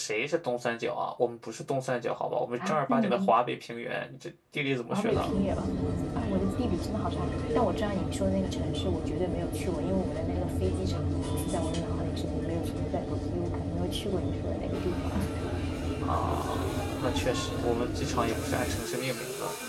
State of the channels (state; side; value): identical; both; correlation 1.00